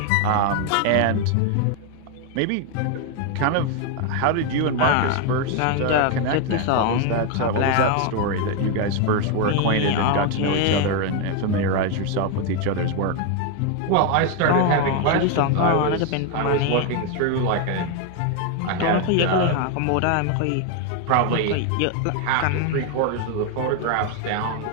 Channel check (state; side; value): different; both; correlation 0.01